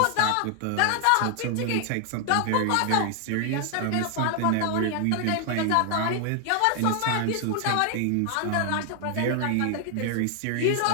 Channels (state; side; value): different; both; correlation 0.00